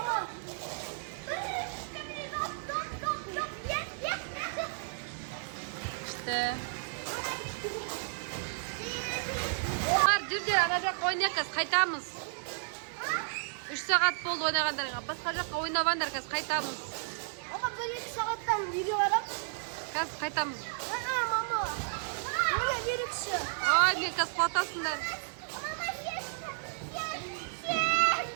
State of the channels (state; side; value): silent; left; 56 dB below the other